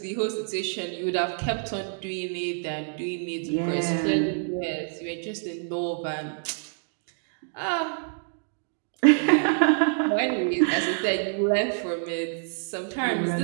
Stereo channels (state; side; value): silent; left; digital silence